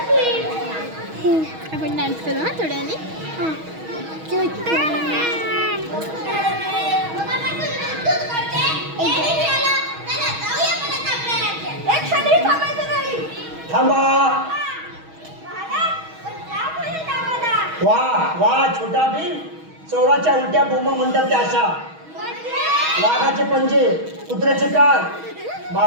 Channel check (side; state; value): left; late; 6.3 ms